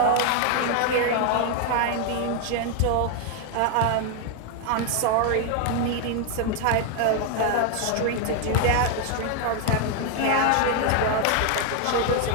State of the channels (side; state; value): both; different; correlation 0.01